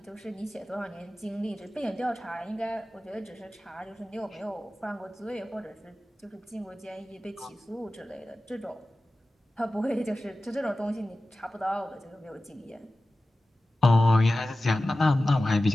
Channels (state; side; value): normal; both; correlation 0.95